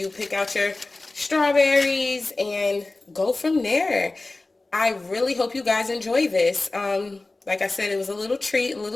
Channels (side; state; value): right; quieter; 3.1 dB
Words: pick out your strawberries and go from there. I really hope you guys enjoy this. Like I said, it was a little treat, a